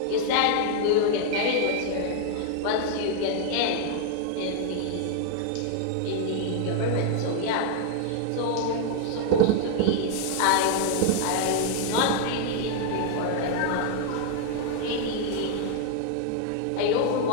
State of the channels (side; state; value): both; different; correlation 0.00